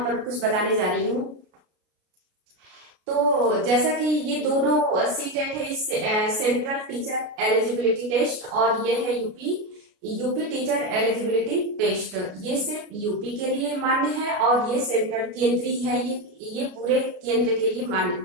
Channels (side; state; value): left; late; 33 ms